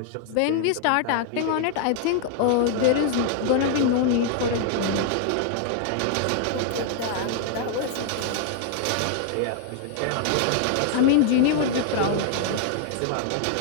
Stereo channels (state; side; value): different; both; correlation 0.00